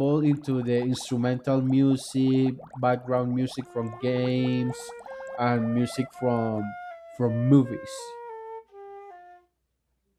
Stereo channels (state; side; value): identical; both; correlation 1.00